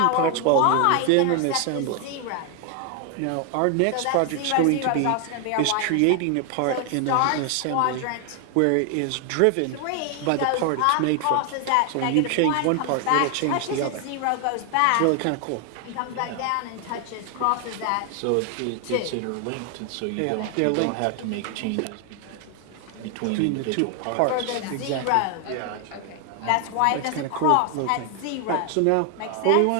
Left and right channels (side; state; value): both; different; correlation 0.00